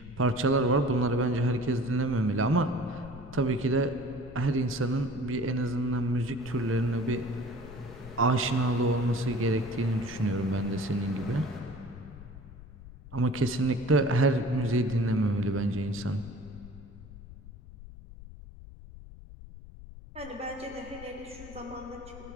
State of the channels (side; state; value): left; noise; rumble, 16 dB below the sound